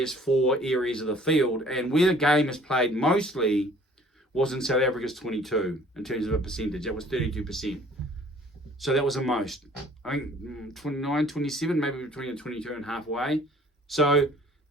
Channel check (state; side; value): normal; both; correlation 0.54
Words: 4 areas of the field, and where the game is played mostly was in South Africa's 22 in terms of a percentage. That was 32%. So that was the most. I think 29, 27, maybe between the 22 and halfway. So